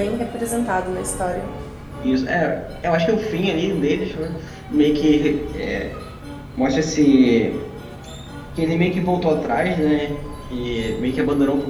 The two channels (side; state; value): both; identical; correlation 1.00